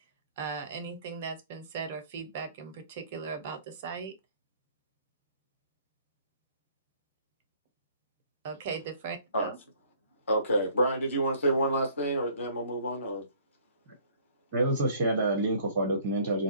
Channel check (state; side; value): inverted; both; correlation -0.57